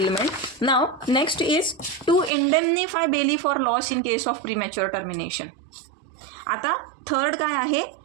Now next is to indemnify bailee for loss in case of premature termination. आता third काय आहे?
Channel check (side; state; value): left; drops out; at 2.3 s